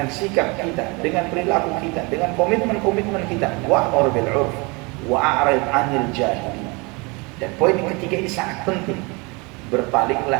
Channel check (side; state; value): left; quieter; 28.1 dB